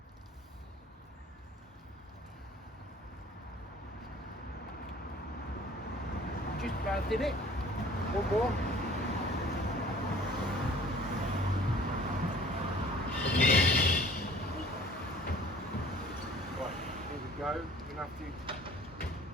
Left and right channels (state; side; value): normal; both; correlation 0.50